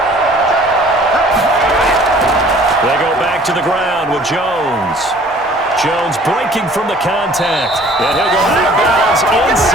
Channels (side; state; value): both; normal; correlation 0.53